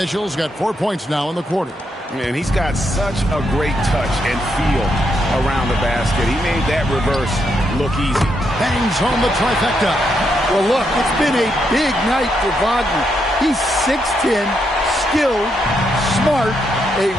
got 4 points now in the quarter. And he's got such a great touch and feel around the basket. He made that reverse look easy. Bangs home the trifecta. Well, look, it's been a big night for Wagner. He's 6'10", skilled, smart, a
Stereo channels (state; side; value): normal; both; correlation 0.79